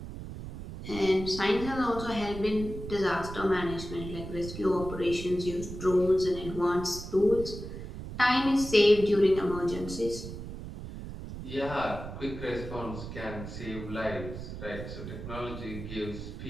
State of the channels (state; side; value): noise; right; rumble, 9 dB below the sound